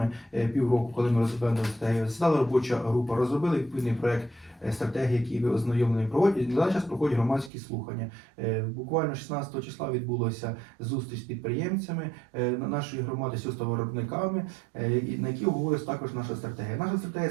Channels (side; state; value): left; drops out; at 7.5 s